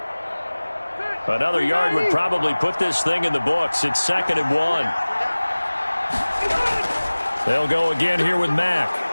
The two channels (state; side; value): inverted; both; correlation -1.00